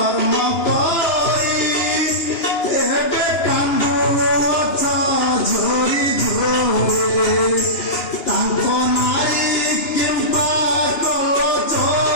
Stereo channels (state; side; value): late; right; 2.9 ms